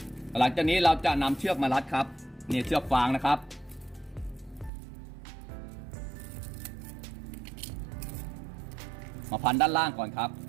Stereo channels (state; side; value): drops out; left; at 4.7 s